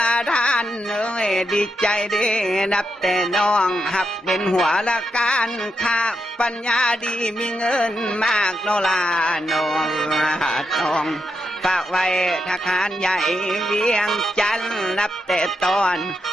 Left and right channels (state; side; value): normal; both; correlation 0.84